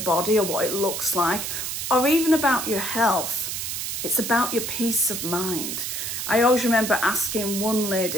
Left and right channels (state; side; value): noise; right; hiss, 4 dB below the sound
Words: or what it looks like, or even about your health. It's about your peace of mind. I always remember asking one